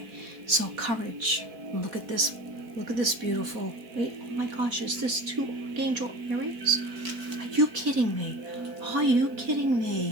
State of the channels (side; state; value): left; late; 4.2 ms